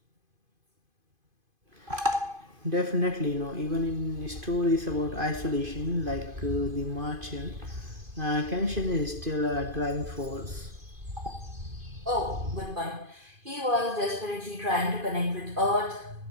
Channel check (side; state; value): left; late; 2.5 ms